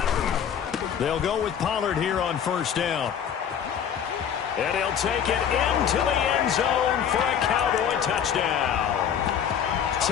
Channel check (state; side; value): quieter; right; 8.5 dB